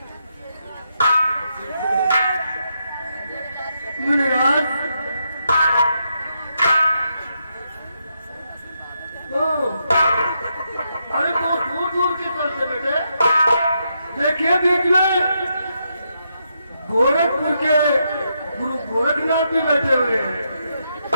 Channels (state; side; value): inverted; both; correlation -0.81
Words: मुनिराज, अरे बहुत दूर दूर की तरफ से बैठे। देखिए बीच में गोरखपुर के गुरु गोरखनाथ भी बैठे हुए हैं।